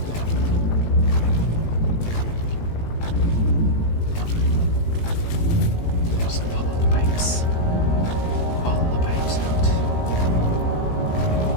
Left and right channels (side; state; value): right; late; 18 ms